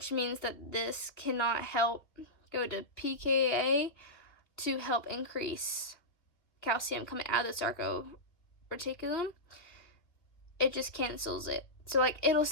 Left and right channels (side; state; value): right; late; 2.1 ms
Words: means that this cannot help go to pKa to help increase calcium coming out of the sarcopterygium. It just cancels it. So like it'll